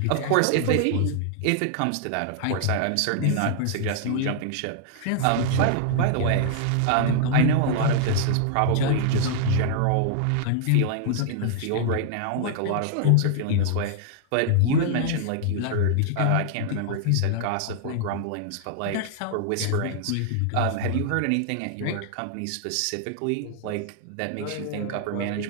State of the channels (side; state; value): both; different; correlation -0.01